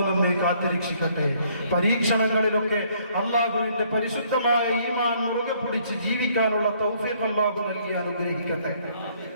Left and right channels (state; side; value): inverted; both; correlation -0.64